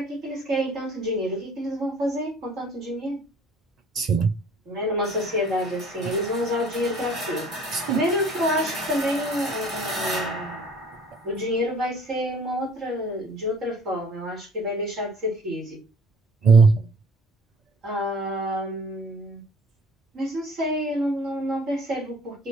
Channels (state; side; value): normal; both; correlation 0.52